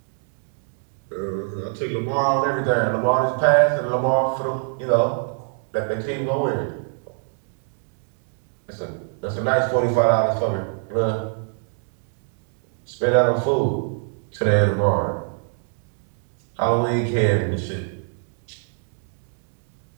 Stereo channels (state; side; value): silent; left; 63 dB below the other